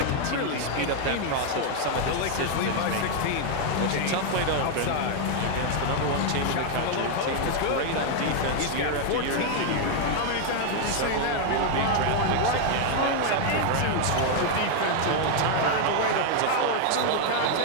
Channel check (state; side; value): different; both; correlation 0.00